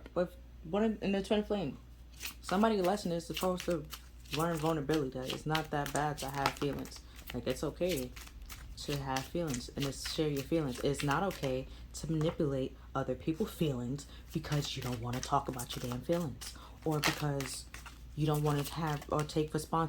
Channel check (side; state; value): both; identical; correlation 1.00